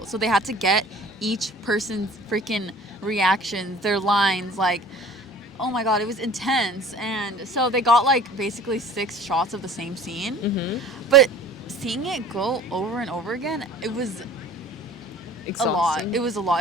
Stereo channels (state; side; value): normal; both; correlation 0.46